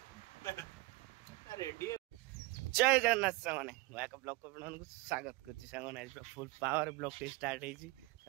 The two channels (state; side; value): quieter; left; 21.8 dB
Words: रेडी जय जगन्नाथ सामने एक ब्लॉग को स्वागत कर फुल पावर ब्लॉग टे स्टार्ट होती